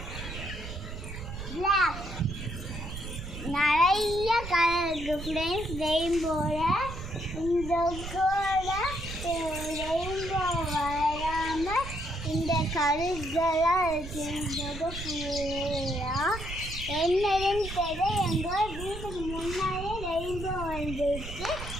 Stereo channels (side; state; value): right; noise; rumble, 9 dB below the sound